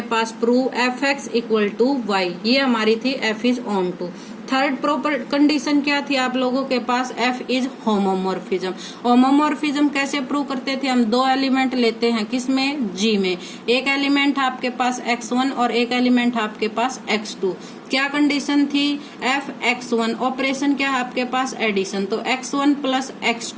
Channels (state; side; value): identical; both; correlation 1.00